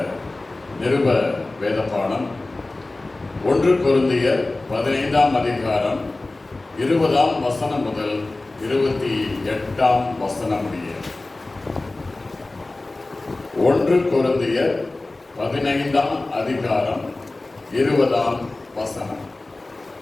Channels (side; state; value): right; quieter; 3.0 dB